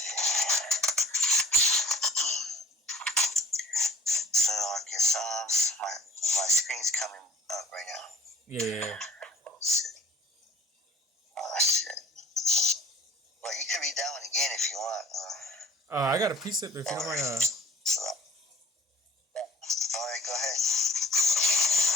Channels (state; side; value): normal; both; correlation 0.52